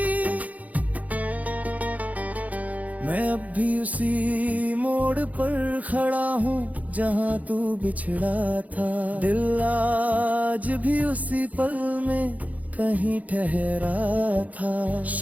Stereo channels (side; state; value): left; late; 0.074 ms